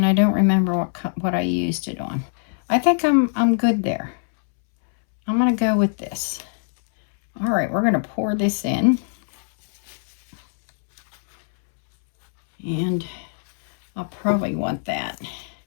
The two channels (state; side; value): silent; right; 64 dB below the other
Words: I don't remember what I used it on. I think I'm good there. I'm going to go with this. All right, we're going to pour this in. And I'll probably want that.